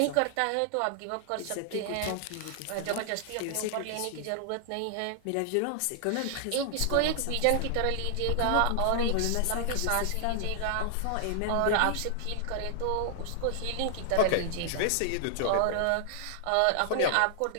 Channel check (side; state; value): both; different; correlation 0.00